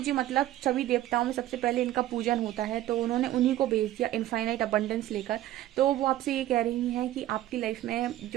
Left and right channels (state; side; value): quieter; left; 14.1 dB